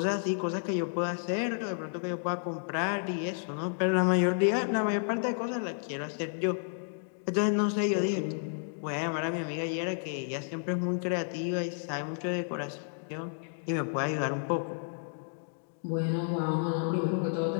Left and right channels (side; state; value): right; silent; digital silence